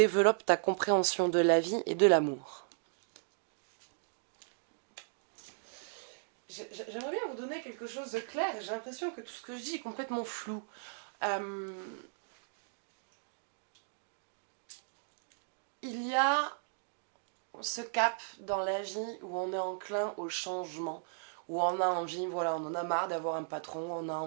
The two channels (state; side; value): silent; left; digital silence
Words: ta compréhension de la vie et de l'amour. J'aimerais bien vous donner quelque chose de clair. J'ai l'impression que tout ce que je dis est complètement flou. Il y a ce cap dans la vie où on est enclin au changement, où on a envie, voilà, on en a marre d'avoir un patron, on a